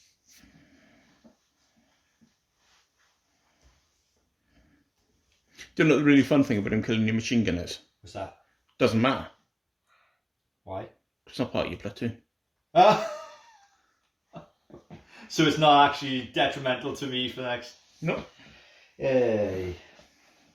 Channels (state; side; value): identical; both; correlation 1.00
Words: Do you know what the really fun thing about him killing your machine gun is? What's that? Doesn't matter. Why? It's not part of your platoon. So it's not actually detrimental to me for the next... No. Yay.